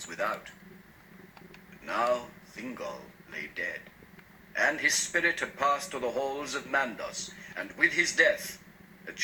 without. But now Thingol lay dead, and his spirit had passed to the halls of Mandos, and with his death a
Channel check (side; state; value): both; identical; correlation 1.00